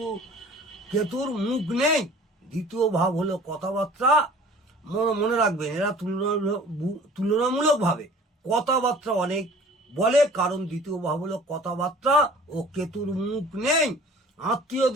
কেতুর মুখ নেই। দ্বিতীয় ভাব হলো কথাবার্তা। মনে রাখবেন, এরা তুলনামূলকভাবে কথাবার্তা অনেক বলে, কারণ দ্বিতীয় ভাব হলো কথাবার্তা ও কেতুর মুখ নেই।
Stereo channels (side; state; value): both; normal; correlation 0.47